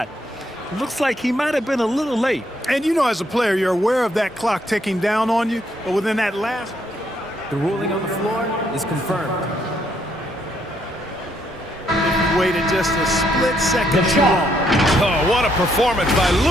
Looks like he might have been a little late. And you know, as a player, you're aware of that clock ticking down on you, but within that last... The ruling on the floor is confirmed. Waited just a split second too long. Oh, what a performance by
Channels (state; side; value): normal; both; correlation 0.72